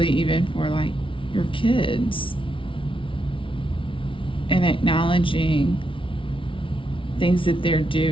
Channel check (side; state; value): right; late; 0.25 ms